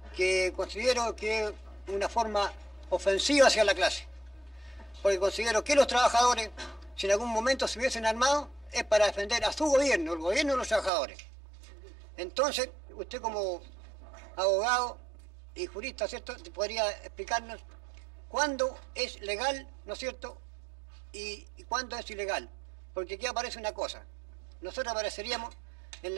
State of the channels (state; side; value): drops out; left; at 10.9 s